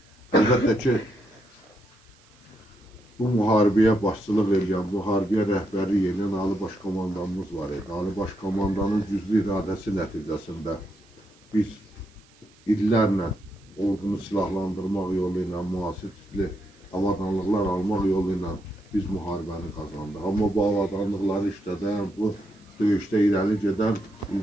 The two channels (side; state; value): right; noise; hiss, 30 dB below the sound